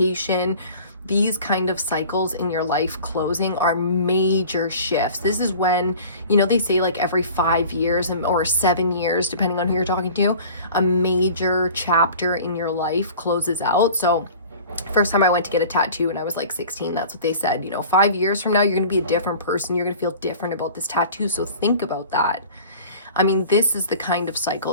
These kind of cycles in your life closing are major shifts. This is when, you know, they say like every 5 years or 7 years, depending on who you're talking to, a major chapter in your life closes out. So first time I went to get a tattoo when I was like 16, that's what they said, you know, 5 years from now, you're going to be a different person. You're going to feel different about this tattoo. So think about that. I mean, this is the kind of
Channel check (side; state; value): both; inverted; correlation -0.42